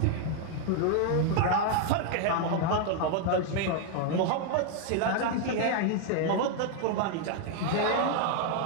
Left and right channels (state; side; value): different; both; correlation 0.00